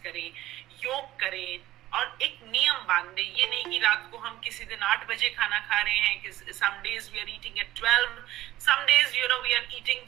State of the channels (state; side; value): quieter; left; 15.2 dB